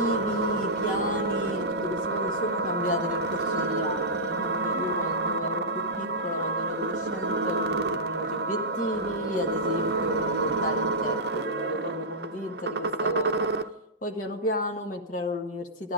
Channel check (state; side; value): normal; both; correlation -0.14